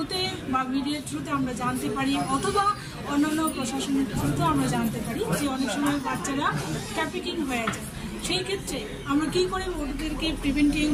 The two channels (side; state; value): both; identical; correlation 1.00